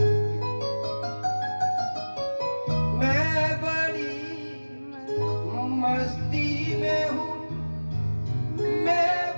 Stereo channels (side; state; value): both; inverted; correlation -1.00